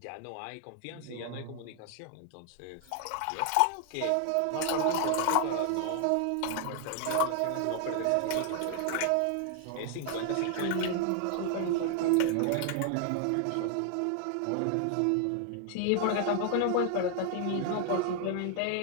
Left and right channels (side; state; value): both; different; correlation 0.00